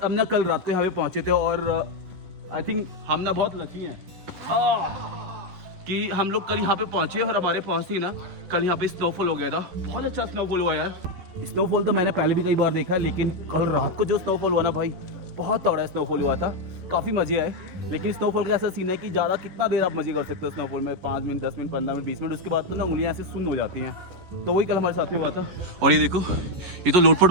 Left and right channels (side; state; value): left; late; 11 ms